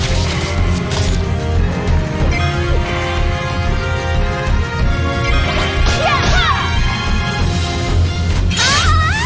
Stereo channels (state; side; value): identical; both; correlation 1.00